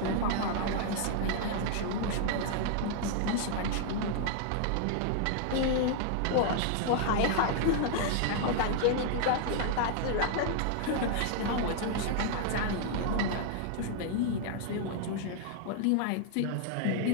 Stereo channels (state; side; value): different; both; correlation 0.00